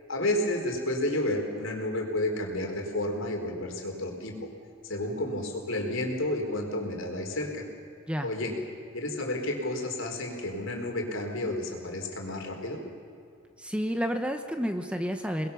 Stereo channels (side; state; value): both; normal; correlation 0.17